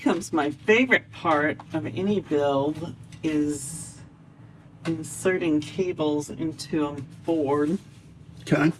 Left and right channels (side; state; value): both; identical; correlation 1.00